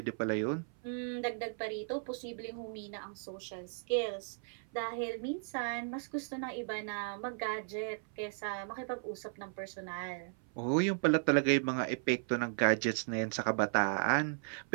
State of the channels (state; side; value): silent; left; 54 dB below the other